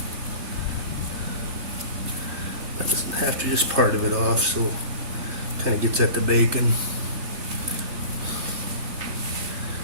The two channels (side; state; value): left; late; 3.2 ms